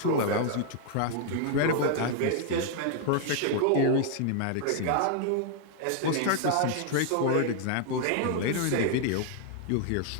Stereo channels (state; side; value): different; both; correlation 0.00